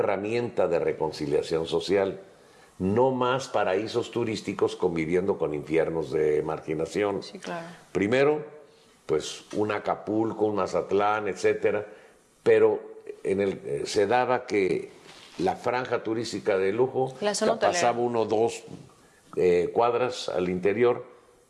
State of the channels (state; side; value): identical; both; correlation 1.00